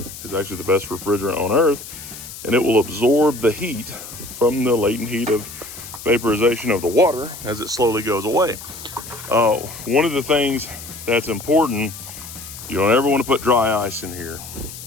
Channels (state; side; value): noise; left; hiss, 13 dB below the sound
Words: is actually the best refrigerant on earth, and it will absorb the heat from the latent heat of vaporization of the water as it slowly goes away. One of the things that's important, you don't ever want to put dry ice in here,